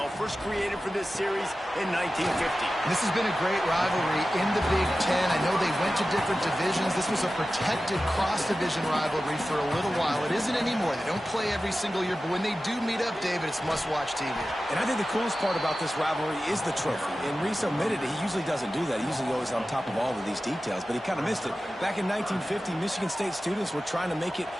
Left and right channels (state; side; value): normal; both; correlation 0.94